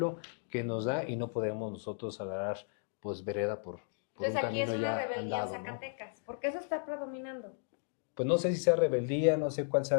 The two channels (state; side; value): silent; right; 55 dB below the other